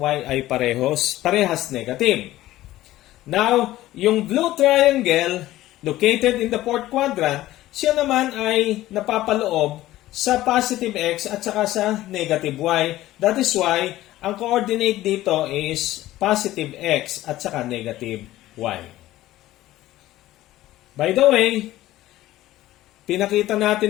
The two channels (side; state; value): right; quieter; 15.5 dB